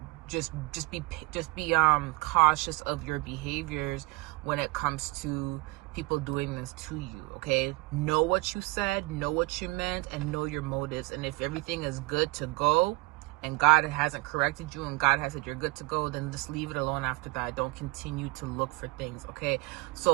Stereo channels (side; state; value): left; quieter; 24.5 dB